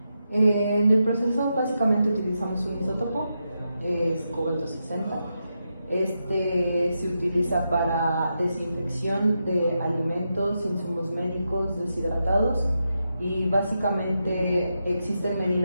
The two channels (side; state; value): both; inverted; correlation -0.86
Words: En el proceso básicamente utilizamos un isótopo, es cobalto 60. Se utiliza para desinfección de alimentos, insumos médicos deshidratados, y básicamente existen